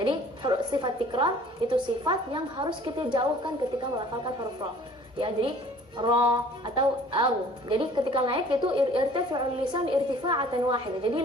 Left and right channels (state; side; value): normal; both; correlation 0.51